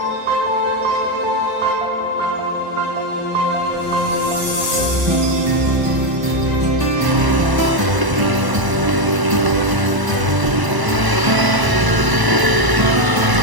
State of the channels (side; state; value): left; late; 1.0 ms